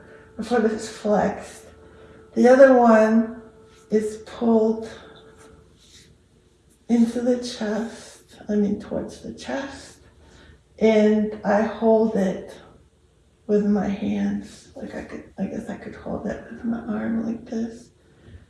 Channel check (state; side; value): identical; both; correlation 1.00